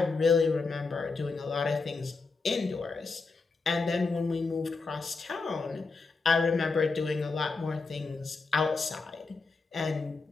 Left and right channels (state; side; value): quieter; right; 4.2 dB